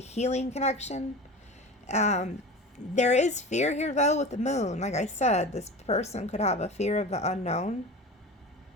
healing connection. There is fear here, though, with the moon. Like I said, this person could have a fear of the unknown.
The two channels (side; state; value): both; normal; correlation 0.33